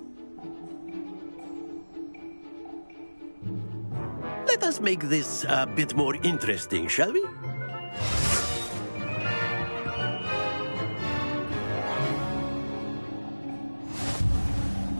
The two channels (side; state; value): both; inverted; correlation -1.00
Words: Let us make this a bit more interesting, shall we?